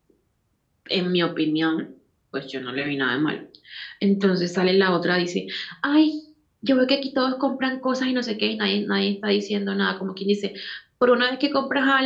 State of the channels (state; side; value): identical; both; correlation 1.00